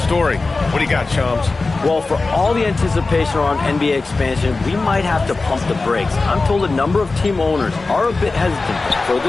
story. What do you got, Shams? Well, for all the anticipation around NBA expansion, we might have to pump the brakes. I'm told a number of team owners are a bit hesitant to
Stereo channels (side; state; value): right; quieter; 3.6 dB